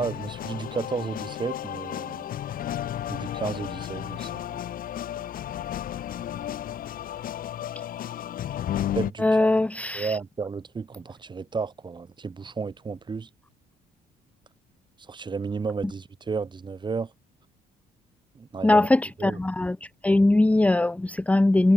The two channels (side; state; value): both; normal; correlation 0.86